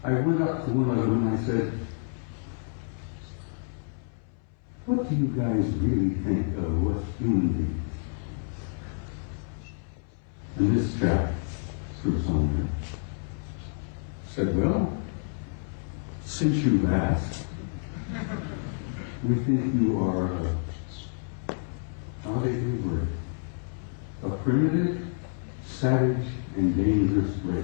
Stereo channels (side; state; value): right; silent; 59 dB below the other